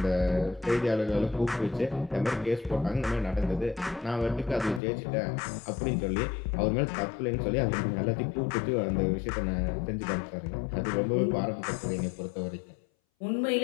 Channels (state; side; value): drops out; right; at 4.8 s